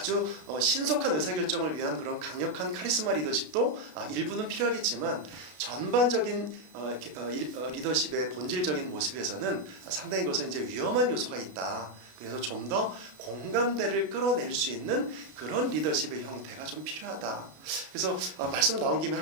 신속한 의사결정을 위한 그런 강력한 카리스마 리더십도 일부는 필요하겠지만 전반적인 리더십의 본질적인 모습에서는 상당히 그것은 이제 위험한 요소가 있다. 그래서 좀 더 공감대를 끌어낼 수 있는 그런 리더십의 형태가 좀 필요하다. 그래서 말씀 나온 김에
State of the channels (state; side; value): late; left; 33 ms